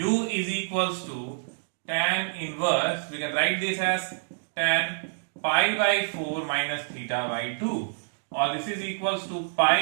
is equals to tan inverse. We can write this as tan pi by 4 minus theta by 2, or this is equals to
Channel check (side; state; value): left; silent; digital silence